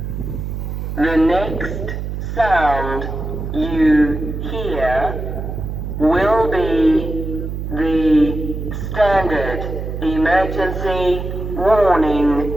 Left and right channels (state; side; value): noise; right; hum, 5 dB below the sound